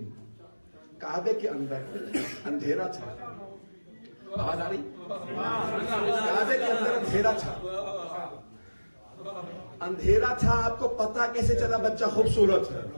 کعبے کے اندر اندھیرا تھا, آواز آ رہی, کعبے کے اندر اندھیرا تھا, اندھیرا تھا, آپ کو پتا کیسے چلا بچہ خوبصورت ہے؟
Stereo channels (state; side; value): inverted; both; correlation -1.00